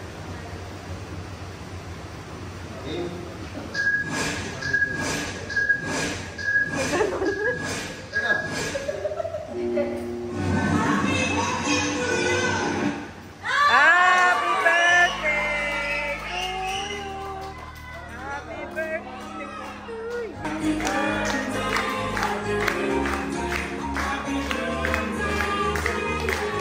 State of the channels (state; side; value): identical; both; correlation 1.00